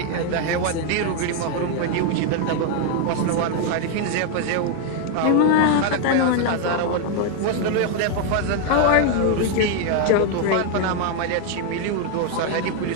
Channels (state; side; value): different; both; correlation 0.00